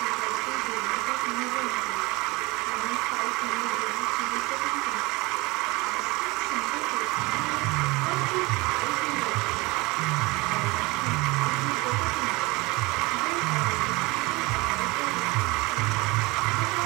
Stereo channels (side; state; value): left; quieter; 23.7 dB